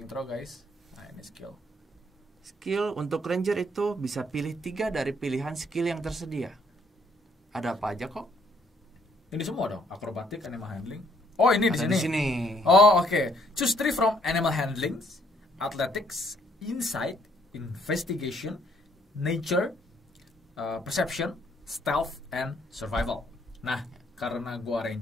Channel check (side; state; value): both; normal; correlation 0.67